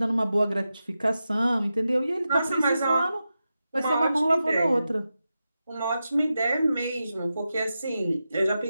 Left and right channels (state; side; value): inverted; both; correlation -0.91